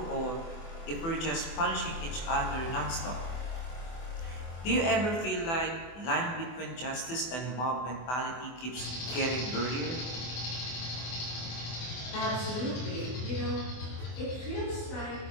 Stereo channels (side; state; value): right; late; 24 ms